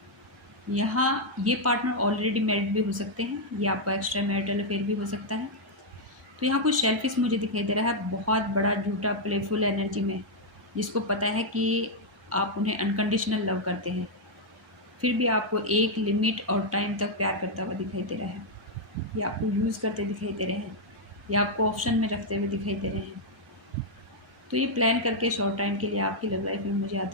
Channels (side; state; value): both; normal; correlation -0.03